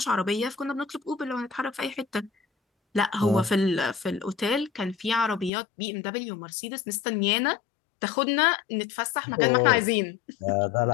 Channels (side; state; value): right; drops out; at 5.5 s